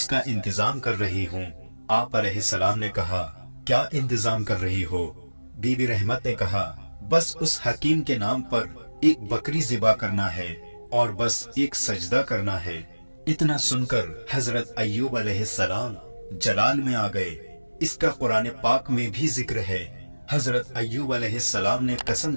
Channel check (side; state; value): both; inverted; correlation -1.00